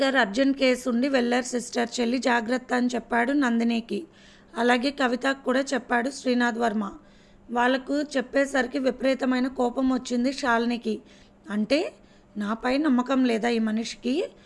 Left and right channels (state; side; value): identical; both; correlation 1.00